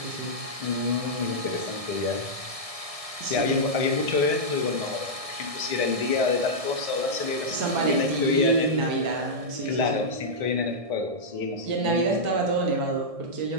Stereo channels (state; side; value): late; left; 1.7 ms